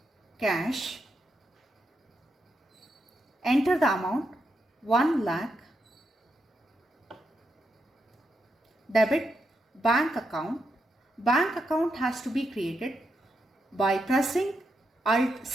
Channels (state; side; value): normal; both; correlation 0.83